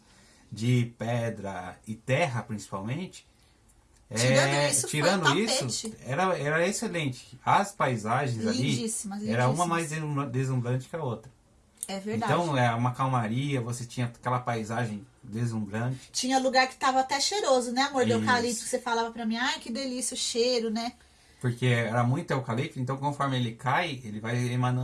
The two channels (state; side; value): identical; both; correlation 1.00